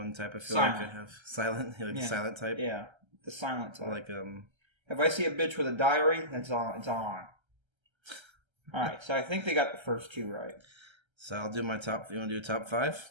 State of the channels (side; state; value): left; late; 1.3 ms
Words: type. I feel Silent. like I have silent, the silent type. Yeah, the silent type. Like If I see a bitch with a diary, it's on. All right, so I think they got the first 2 right. So I'll do my top. You want to do top 5?